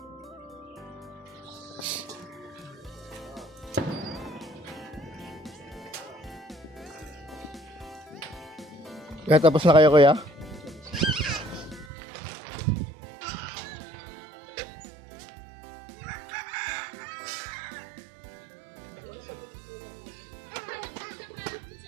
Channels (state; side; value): drops out; left; at 11.9 s